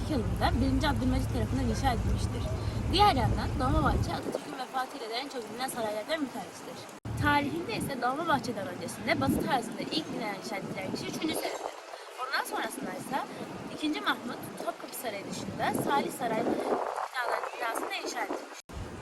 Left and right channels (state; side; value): identical; both; correlation 1.00